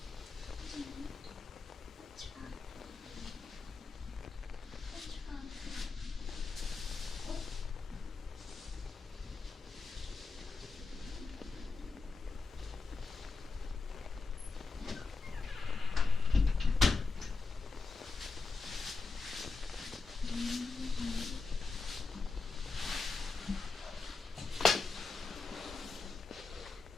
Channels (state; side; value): quieter; right; 4.2 dB